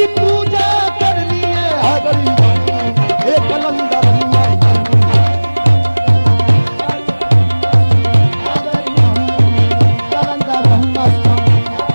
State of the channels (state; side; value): inverted; both; correlation -1.00